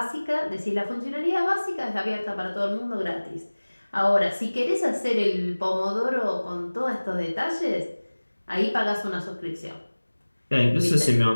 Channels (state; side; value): inverted; both; correlation -1.00